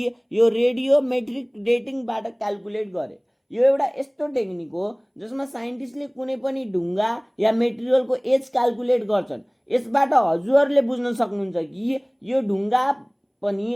यो रेडियोमेट्रिक डेटिङबाट क्यालकुलेट गरे। यो एउटा यस्तो टेक्निक हो जसमा साइन्टिस्टले कुनै पनि ढुङ्गा या मेटेरियलको एज क्यालकुलेट गर्छन्। यसबाट हजुरहरूले बुझ्न सक्नुहुन्छ कि यो ढुङ्गा पनि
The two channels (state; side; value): identical; both; correlation 1.00